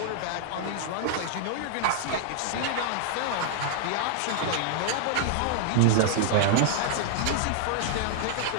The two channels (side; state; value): both; different; correlation 0.00